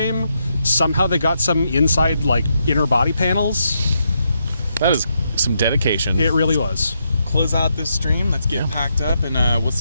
Somehow they got some inside, inner body panels. That is some dedication. It really was. Close out this stream. Let's get packed up, and we'll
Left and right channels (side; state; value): both; inverted; correlation -0.81